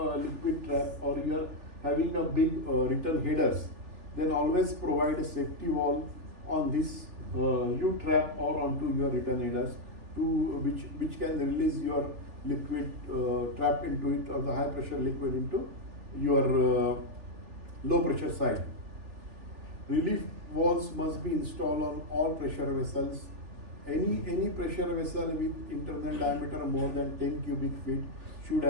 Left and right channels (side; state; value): left; late; 3.4 ms